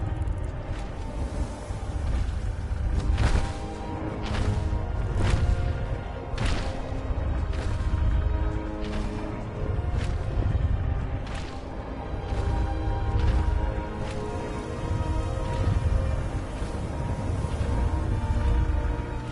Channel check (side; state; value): both; identical; correlation 1.00